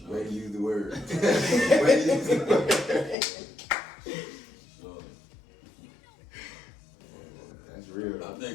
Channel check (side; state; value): right; drops out; at 3.2 s